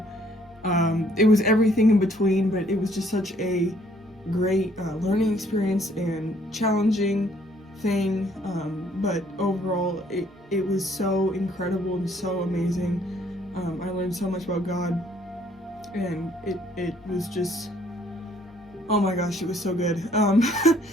It was everything in between, but it was just such a great learning experience and challenging thing. But overall, it was so incredible and so amazing. I learned so much about God, and it was just, oh my gosh, it was so good.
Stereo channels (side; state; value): both; normal; correlation 0.64